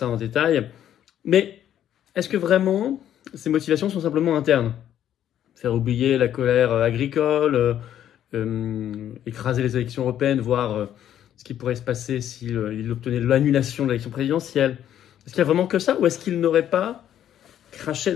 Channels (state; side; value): quieter; right; 10.8 dB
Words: en détail. Mais est-ce que vraiment ces motivations sont simplement internes? Faire oublier la colère agricole, écraser les élections européennes, voir ce qui pourrait se passer s'il obtenait l'annulation de l'élection présidentielle. Est-ce qu'il y a vraiment que ça, ou est-ce qu'il n'aurait pas craché